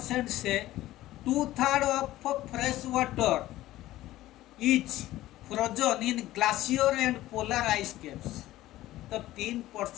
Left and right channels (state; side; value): quieter; right; 15.6 dB